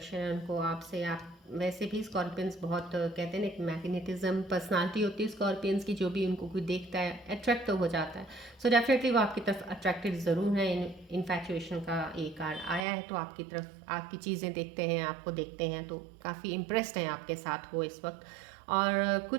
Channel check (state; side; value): drops out; left; at 12.8 s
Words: है उनको आपसे। आप वैसे भी स्कॉर्पियंस बहुत कहते हैं ना, एक मैग्नेटिज्म पर्सनालिटी होती है स्कॉर्पियंस की, जो भी उनको कोई देखता है अट्रैक्ट तो हो जाता है। सो डेफिनेटली वो आपकी तरफ अट्रैक्टेड ज़रूर है। इन्फैचुएशन का एक कार्ड आया है, तो आपकी तरफ आपकी चीज़ें देखते हैं, आपको देखते हैं तो काफ़ी इम्प्रेस्ड हैं आपके साथ वो इस वक्त। और